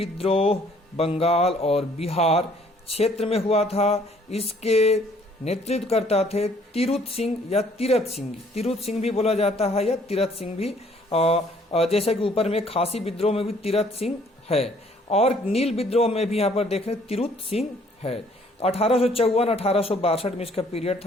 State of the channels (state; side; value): normal; both; correlation 0.61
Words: बंगाल और बिहार क्षेत्र में हुआ था। इसके नेतृत्व करता थे तीरुथ सिंह या तीरथ सिंह, तीरुथ सिंह भी बोला जाता है या तीरथ सिंह भी, जैसे कि ऊपर में खासी विद्रोह में भी तीरथ सिंह है और नील विद्रोह में भी यहाँ पर देख रहे तीरुथ सिंह है। 1854-1862 में इसका पीरियड